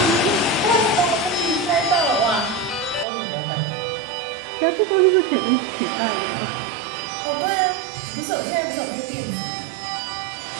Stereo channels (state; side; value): drops out; left; at 3.1 s